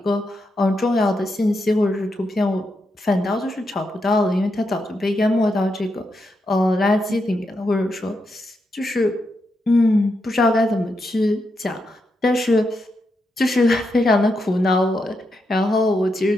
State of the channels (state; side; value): normal; both; correlation 0.84